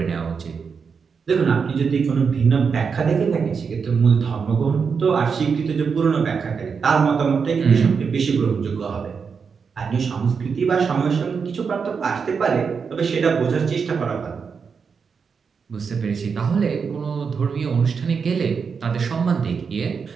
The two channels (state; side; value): quieter; left; 5.8 dB